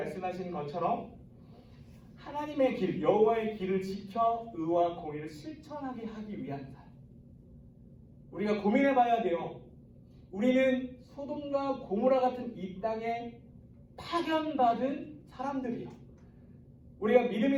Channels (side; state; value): both; identical; correlation 1.00